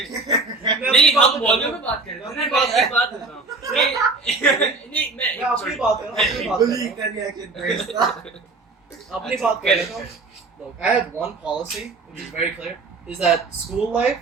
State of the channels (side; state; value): left; quieter; 3.7 dB